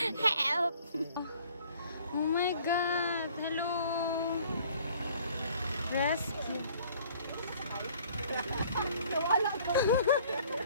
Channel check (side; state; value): both; inverted; correlation -0.55